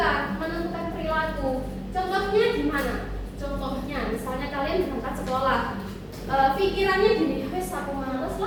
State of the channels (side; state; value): both; identical; correlation 1.00